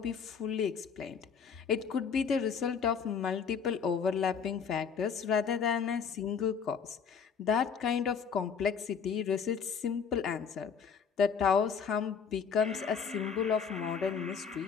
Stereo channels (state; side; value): quieter; right; 6.6 dB